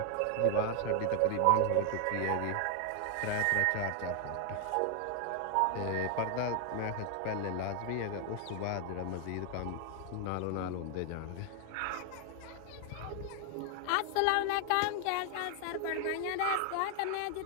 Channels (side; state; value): both; different; correlation 0.00